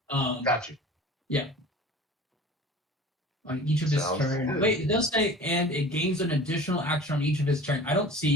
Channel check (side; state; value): both; normal; correlation 0.41